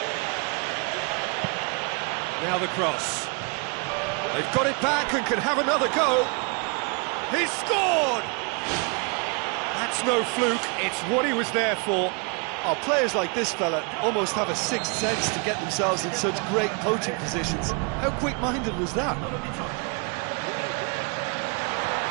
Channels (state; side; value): quieter; left; 33.4 dB